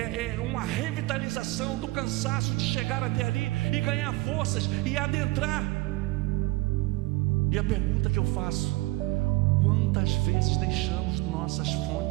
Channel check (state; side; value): quieter; left; 21.3 dB